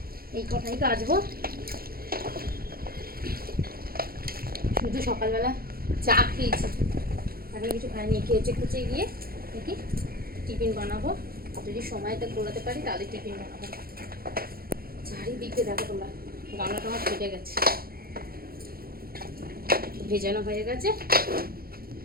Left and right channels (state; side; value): late; left; 0.44 ms